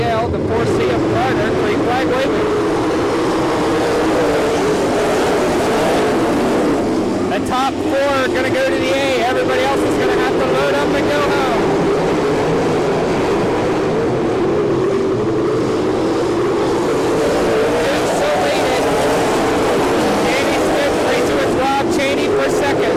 the 4C of Carter, green flag waving. The top 4 are going to go to the A. Everybody else is going to have to load up and go home. Dukes so weighted. Danny Smith, 3-2 is Rob Cheney for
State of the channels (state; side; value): identical; both; correlation 1.00